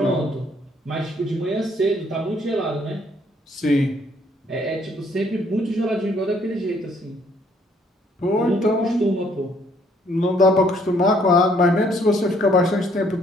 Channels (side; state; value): both; normal; correlation 0.65